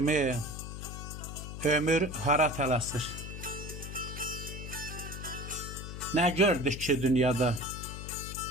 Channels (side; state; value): left; noise; hum, 8 dB below the sound